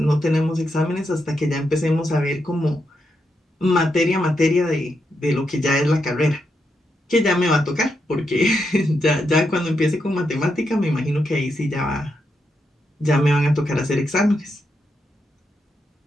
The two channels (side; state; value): both; normal; correlation 0.83